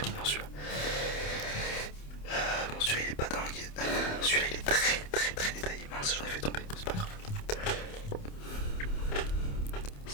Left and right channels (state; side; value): late; right; 28 ms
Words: mignon celui-là. Bon celui-là il est pas dingue. Celui-là il est très détaillé. Mince, j'en ai fait tomber, c'est pas grave.